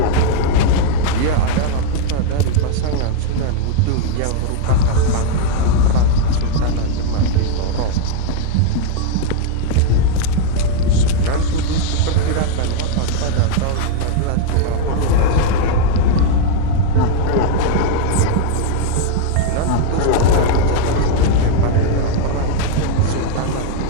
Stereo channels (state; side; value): different; both; correlation 0.00